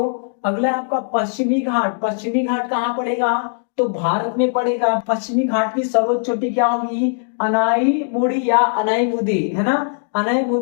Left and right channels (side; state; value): right; silent; digital silence